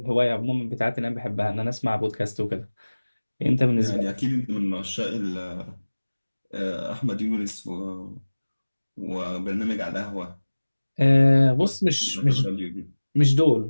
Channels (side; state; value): both; inverted; correlation -1.00